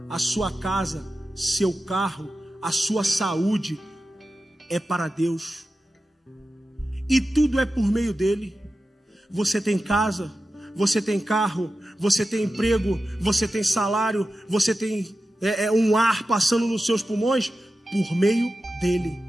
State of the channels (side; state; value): both; normal; correlation 0.93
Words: a sua casa, seu carro, a sua saúde é para Deus. E tudo é por meio dele. Você tem casa, você tem carro, você tem emprego, você tem salário, você tem um ar passando nos seus pulmões por meio dele.